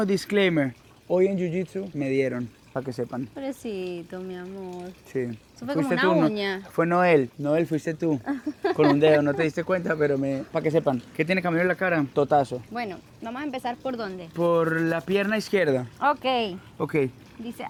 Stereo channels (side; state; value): both; identical; correlation 1.00